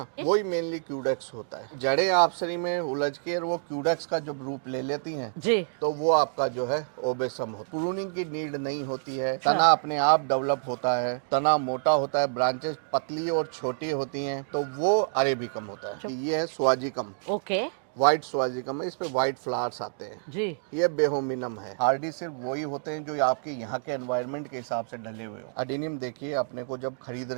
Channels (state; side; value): silent; left; digital silence